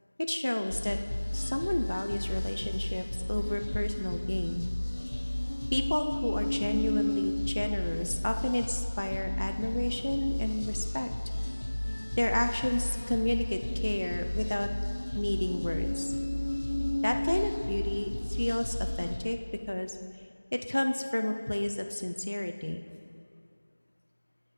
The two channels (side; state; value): both; inverted; correlation -1.00